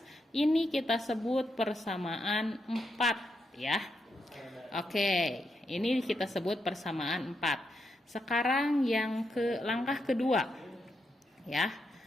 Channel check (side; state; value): both; normal; correlation 0.82